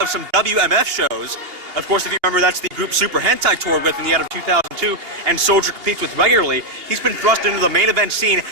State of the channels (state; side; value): late; left; 2.8 ms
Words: of some WMF shows. Of course, if you remember, that's the group Super Hentai toured with in the end of 2002, and Soldier competes with regularly. He's been thrust into the main event scene